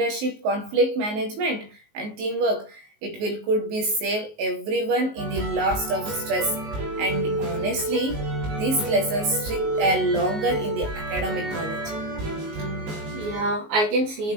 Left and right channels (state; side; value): late; left; 19 ms